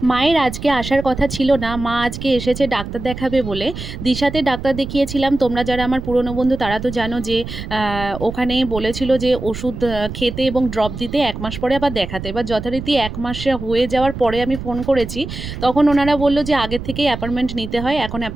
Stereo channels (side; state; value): right; noise; rumble, 9 dB below the sound